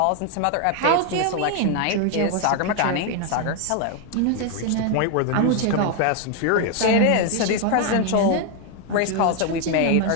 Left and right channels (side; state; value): both; different; correlation 0.01